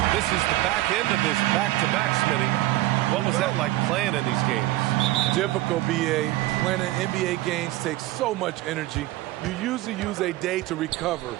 This is the back end of this back-to-back, Smitty. What was that like playing in these games? Difficult, BA. Playing in NBA games takes so much energy. You usually use a day to recover,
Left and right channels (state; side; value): quieter; left; 17.2 dB